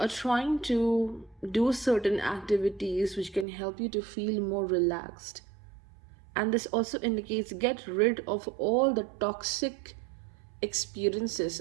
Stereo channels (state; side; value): drops out; left; at 3.5 s